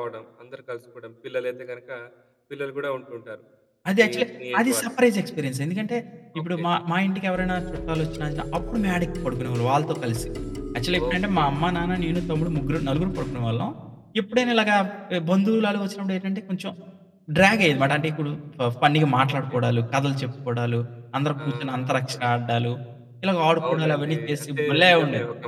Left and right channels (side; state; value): both; identical; correlation 1.00